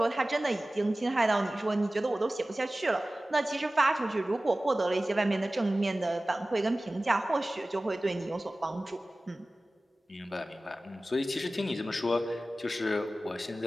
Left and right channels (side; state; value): both; normal; correlation 0.97